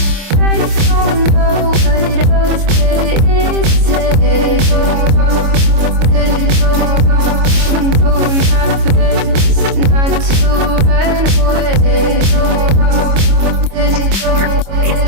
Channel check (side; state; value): left; late; 25 ms